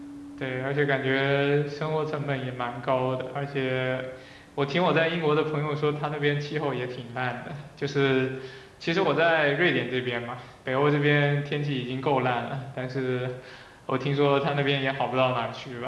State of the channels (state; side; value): identical; both; correlation 1.00